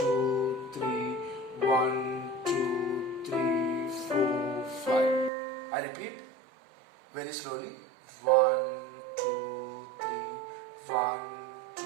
3, 1, 2, 3, 4, 5. I repeat very slowly. 1, 2, 3, 1,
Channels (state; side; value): drops out; left; at 5.3 s